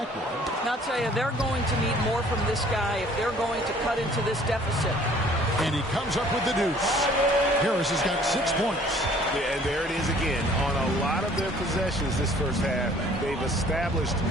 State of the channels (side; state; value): both; normal; correlation 0.55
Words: Now, I'll tell you, they're going to need more from this guy if they're going to cut into this deficit. And he comes up with the deuce. Harris has got 6 points. Yeah, and there it is again. On a lot of their possessions this first half, they've established